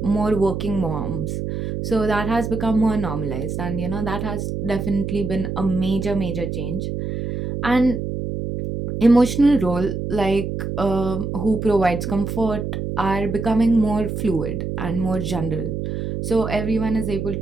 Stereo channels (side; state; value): right; noise; hum, 4 dB below the sound